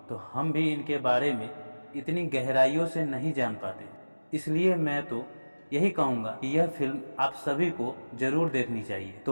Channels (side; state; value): both; inverted; correlation -1.00